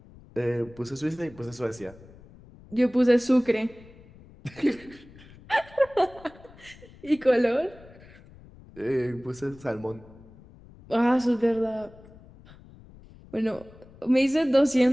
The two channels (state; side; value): noise; left; rumble, 22 dB below the sound